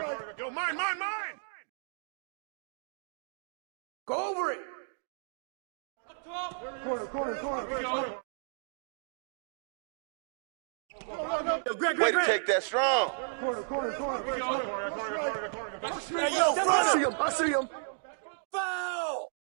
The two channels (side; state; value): left; silent; digital silence